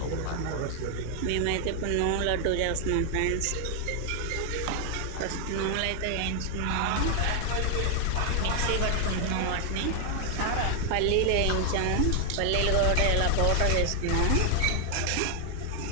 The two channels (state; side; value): different; both; correlation 0.00